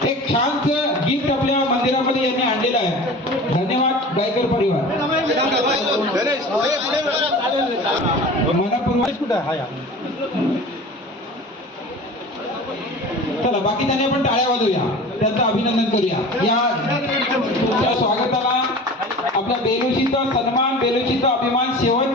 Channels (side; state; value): both; normal; correlation 0.38